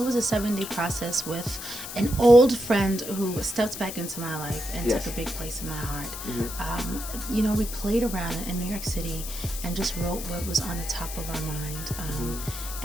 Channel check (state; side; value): noise; left; hiss, 9 dB below the sound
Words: a 7-day process with an old friend who stepped back into my life and took a big place in my heart. We played around in New York City and just wrote what was on the top of our mind.